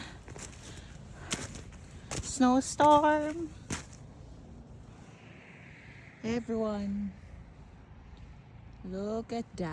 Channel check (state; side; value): identical; both; correlation 1.00